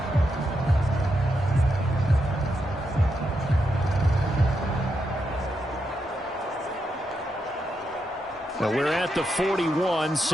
Now we're at the 41,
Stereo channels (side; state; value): both; normal; correlation 0.83